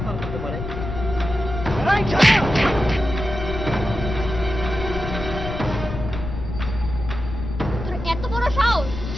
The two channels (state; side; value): noise; left; rumble, 6 dB below the sound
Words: করতে পারে। তোর এত বড় সাহস,